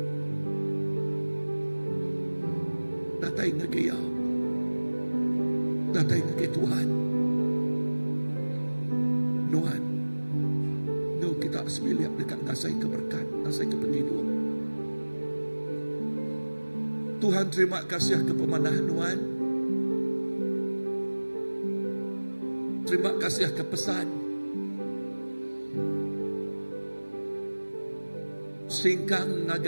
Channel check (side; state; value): both; inverted; correlation -1.00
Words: Datai ngegaya. Datai ngegaya Tuhan. Nuan. No kita sembilan dekat ngasai keberkat. Ngasai ke penghidup. Tuhan terima kasih ke pemanah nuan. Terima kasih ke pesan. Singkang